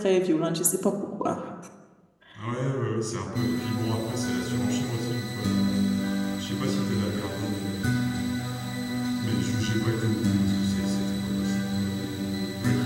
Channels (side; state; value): both; identical; correlation 1.00